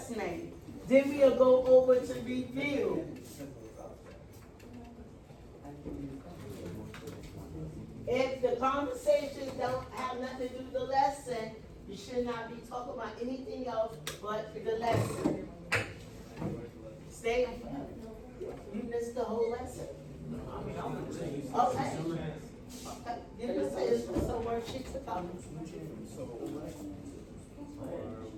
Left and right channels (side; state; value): both; identical; correlation 1.00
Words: Then we'll go over to review. If the conversations don't have nothing to do with the lesson, you should not be talking about anything else but the lesson. Stay. You missed the whole lesson. Okay. You can say it's for some worksheets to come.